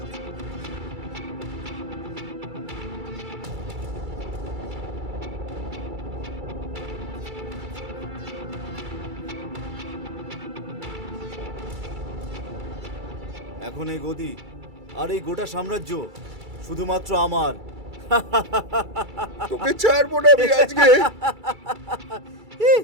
এখন এই গদি আর এই গোটা সাম্রাজ্য শুধুমাত্র আমার। তোকে ছাড়বো না আমি আজকে।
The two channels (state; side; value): late; left; 2.3 ms